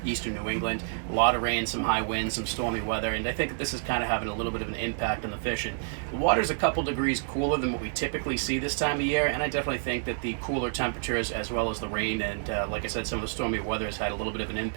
eastern New England. A lot of rain, some high winds, some stormy weather, and I think that this is kind of having a little bit of an impact on the fishing. The water's a couple degrees cooler than what we typically see this time of year, and I definitely think that the cooler temperatures as well as the rain and, like I said, some of the stormy weather has had a little bit of an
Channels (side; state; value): left; silent; digital silence